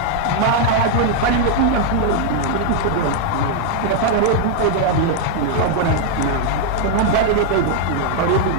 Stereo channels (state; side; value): different; both; correlation 0.00